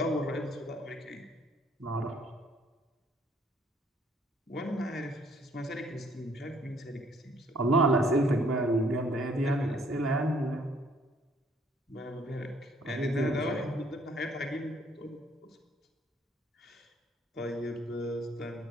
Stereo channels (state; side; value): normal; both; correlation 0.63